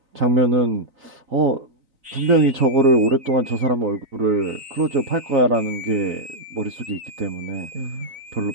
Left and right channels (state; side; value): late; left; 3.9 ms